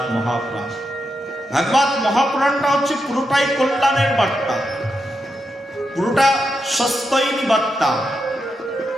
মহাপুরাণ। ভাগবত মহাপুরাণটা হচ্ছে পুরোটাই কল্যাণের বার্তা, পুরোটা সস্তৈনী বার্তা।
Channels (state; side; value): normal; both; correlation 0.85